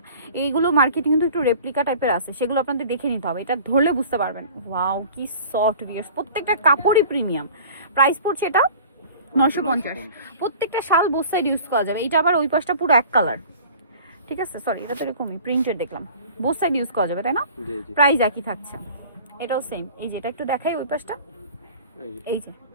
এইগুলো মার্কেটে কিন্তু একটু রেপ্লিকা টাইপের আছে, সেগুলো আপনাদের দেখে নিতে হবে, এটা ধরলে বুঝতে পারবেন। ওয়াও কি সফট ভিউয়ার্স, প্রত্যেকটা কাপড়ই প্রিমিয়াম। প্রাইস পড়ছে এটা 950। প্রত্যেকটা শাল বোথ সাইড ইউজ করা যাবে। এটা আবার ওই পাশটা পুরো এক কালার, ঠিক আছে? সরি এটা তো এরকমই প্রিন্টেড দেখলাম, বোথ সাইড ইউজ করা যাবে, তাই না? প্রাইস একই থাকছে, এটাও সেম। এই যে এটা একটু দেখাই ওই পাশটা, এই যে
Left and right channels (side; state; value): both; inverted; correlation -0.44